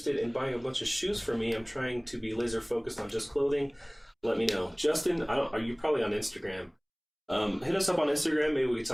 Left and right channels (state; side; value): identical; both; correlation 1.00